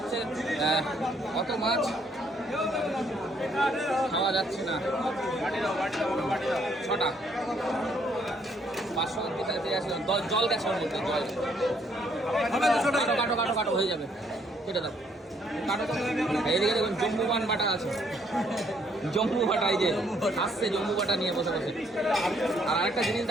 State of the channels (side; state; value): both; normal; correlation 0.68